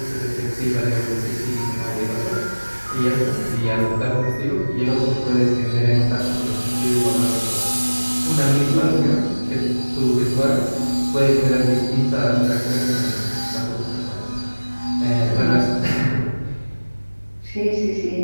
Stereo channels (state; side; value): inverted; both; correlation -1.00